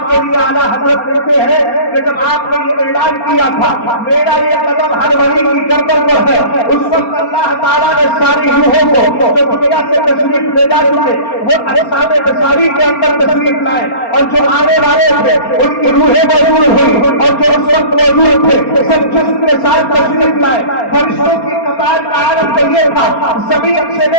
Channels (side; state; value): right; late; 4.3 ms